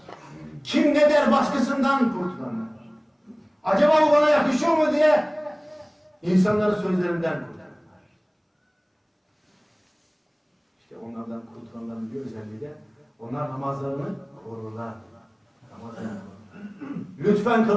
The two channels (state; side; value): identical; both; correlation 1.00